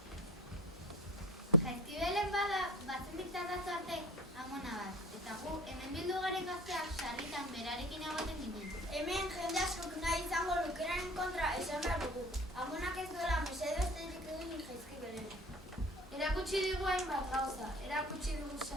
Jaizkibelen bada, batzen diktatatu arte amona bat. Eta gu, hemen bildu garen gazteak sarritan berarekin egoten ginen. Hemen jende askok nahi izango lukeraren kontra esan behar dugu. Amonak ez duela mesedo esterik egin Jaizkibelen. Erakutsi digu hainbat gauza, erakutsi digu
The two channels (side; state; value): both; normal; correlation 0.43